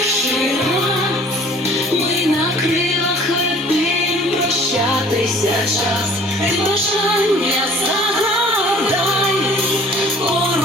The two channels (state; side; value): normal; both; correlation 0.52